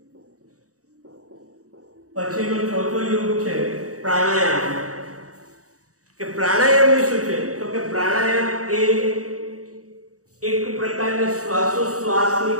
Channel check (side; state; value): left; late; 0.66 ms